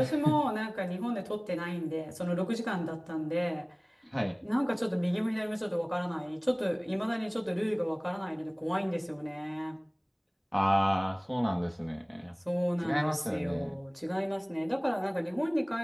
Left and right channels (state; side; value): identical; both; correlation 1.00